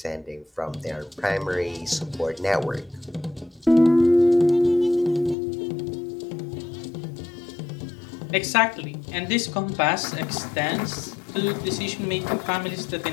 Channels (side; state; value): right; drops out; at 5.4 s